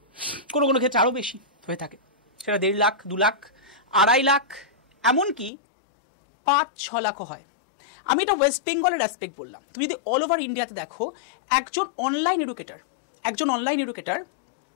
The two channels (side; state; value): right; drops out; at 5.5 s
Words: কোনো কোনো ক্ষেত্রে আরও বেশি হয়ে থাকে, সেটা 1.5 লাখ, 2 লাখ, 2.5 লাখ, এমনকি 5-6 লাখও হয়। আমি এটা ওয়েস্ট বেঙ্গলের অ্যাসপেক্ট বললাম। তুমি যদি অল ওভার ইন্ডিয়াতে দেখো, একজন অনলাইন এডুকেটর